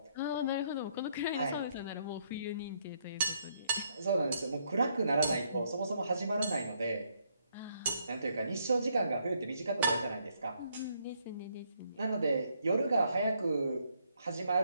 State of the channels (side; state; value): both; inverted; correlation -0.72